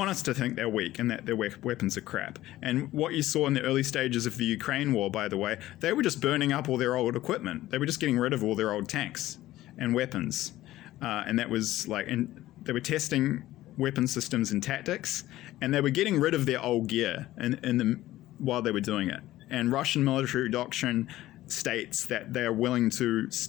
us to think they're weak and that their weapons are crap. And what you saw in the early stages of the Ukraine war, by the way, they were just burning up all their old equipment. They were just getting rid of all their old tanks and weapons. And that was and they were testing weapon systems and tactics, and they were getting rid of their old gear while they were doing it. And Russian military doctrine states that they are willing to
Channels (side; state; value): right; quieter; 15.5 dB